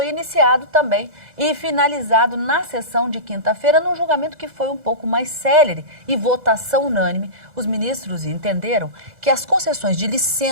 iniciado também e finalizado na sessão de quinta-feira, num julgamento que foi um pouco mais célere e votação unânime. Os ministros entenderam que as concessões de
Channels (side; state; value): left; late; 2.0 ms